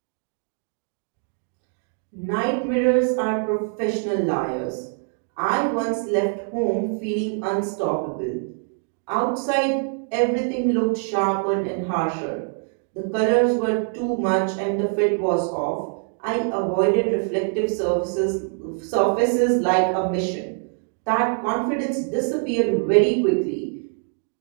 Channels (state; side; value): silent; left; 57 dB below the other